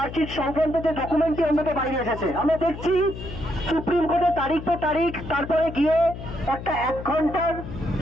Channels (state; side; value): noise; left; hum, 10 dB below the sound